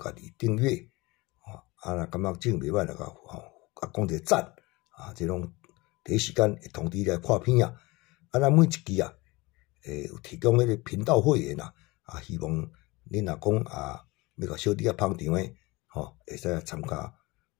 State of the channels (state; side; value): quieter; right; 23.0 dB